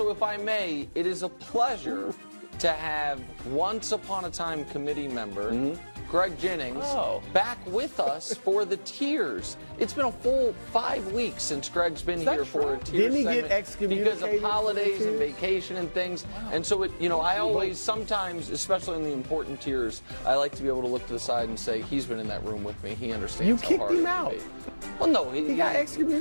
if I may, it is a pleasure to have once upon a time committee member Greg Jennings back with us for the Tears. It's been a full 5 weeks since Greg's been here for a Tears Didn't he segment get excommunicated because of holidays and vacation and things. And so, I always, sometimes, especially in the important Tears, I like to be able to look to the side and say, he's been in that room with me. He understands You how kicked hard him it can out. be. Well, no, He got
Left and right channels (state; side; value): inverted; both; correlation -1.00